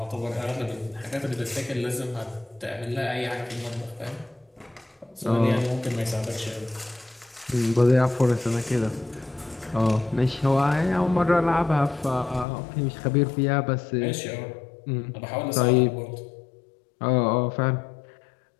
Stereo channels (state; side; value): drops out; right; at 12.5 s